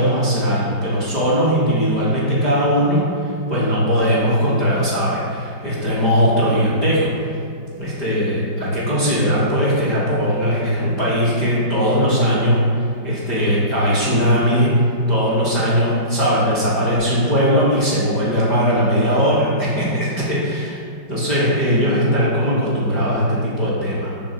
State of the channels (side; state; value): right; late; 5.1 ms